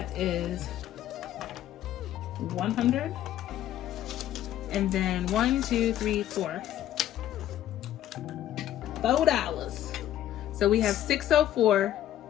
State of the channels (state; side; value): quieter; right; 12.1 dB